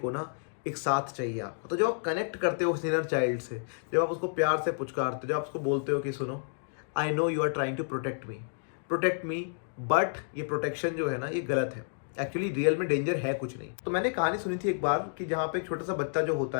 ना एक साथ चाहिए आपको। तो जब आप कनेक्ट करते हो उस इनर चाइल्ड से, जब आप उसको प्यार से पुचकारते हो, जब आप उसको बोलते हो कि सुनो, I know you are trying to protect me, but ये प्रोटेक्शन जो है ना ये गलत है, एक्चुअली रियल में डेंजर है कुछ नहीं। तो मैंने कहानी सुनी थी एक बार कि जहाँ पे एक छोटा सा बच्चा जो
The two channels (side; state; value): right; silent; digital silence